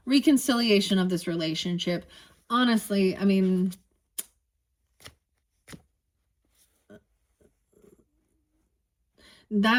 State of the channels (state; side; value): identical; both; correlation 1.00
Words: reconciliation of this relationship. Honestly, I mean,